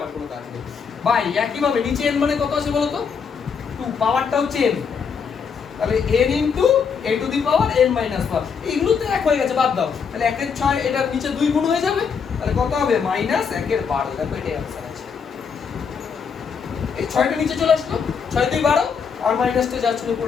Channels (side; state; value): right; quieter; 6.2 dB